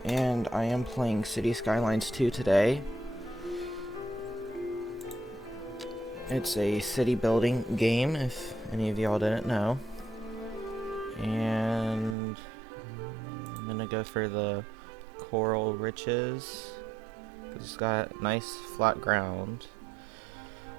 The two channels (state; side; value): drops out; left; at 12.2 s